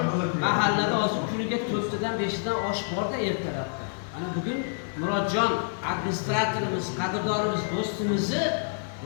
mahallada hozir kuniga 4tadan 5tadan osh bor-da ertalabda. Ana bugun Murodjon administratorimiz, qadrdonimiz, do'stimizni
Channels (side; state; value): right; silent; digital silence